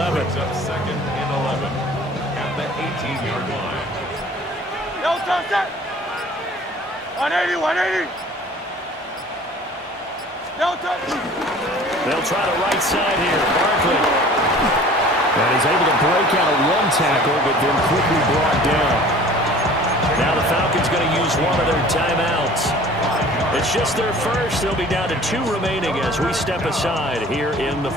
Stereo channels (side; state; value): both; normal; correlation 0.47